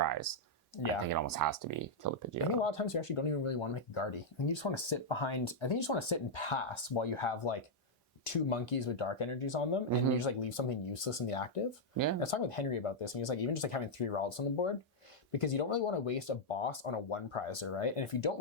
I think it almost has to be Kill the Pidgeotto. I think a lot of times you actually don't even really want to make a Gardy. I think you just want to sit behind, I think you just want to sit and pass while you have like 2 monkeys with dark energies on them, and you just like leave something useless in the active. Yeah. I was talking with Henry about this, and he was like, even just like having 3 Ralts on the board, because you don't really want to waste a boss on a 1 prizer, right? And if you don't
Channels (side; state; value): both; normal; correlation -0.04